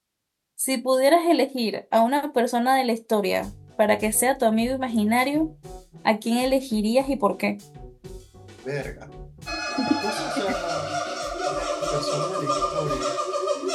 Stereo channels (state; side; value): identical; both; correlation 1.00